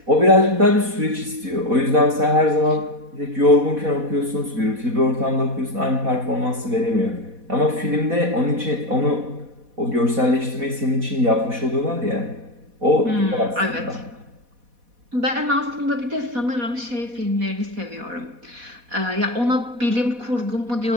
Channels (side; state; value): left; late; 4.1 ms